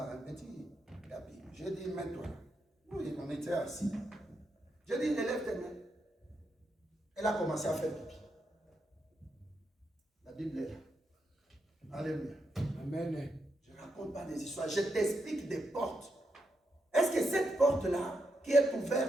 un petit tapis. J'ai dit, mets-toi là. Oui, on était assis. J'ai dit, élève tes mains. Elle a commencé à faire pipi. La Bible est là. Alléluia. Amen. Je ne raconte pas des histoires, je t'explique des portes. Est-ce que cette porte-là, qui est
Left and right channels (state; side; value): normal; both; correlation 0.83